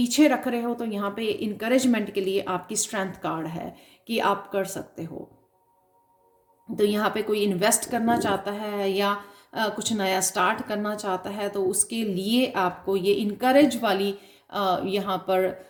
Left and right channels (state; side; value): identical; both; correlation 1.00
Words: रख रहे हो। तो यहाँ पे इनकरेजमेंट के लिए आपकी स्ट्रेंथ कार्ड है कि आप कर सकते हो। तो यहाँ पे कोई इन्वेस्ट करना चाहता है या कुछ नया स्टार्ट करना चाहता है, तो उसके लिए आपको ये इनकरेज वाली यहाँ पर